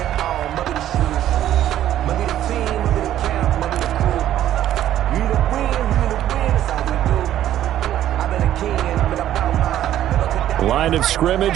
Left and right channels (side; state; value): left; quieter; 12.1 dB